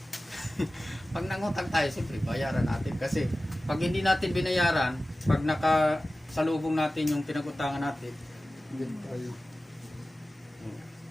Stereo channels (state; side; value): normal; both; correlation 0.96